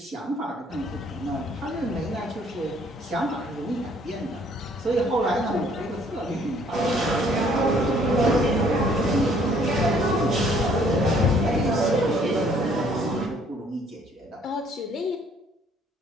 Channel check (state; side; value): normal; both; correlation 0.61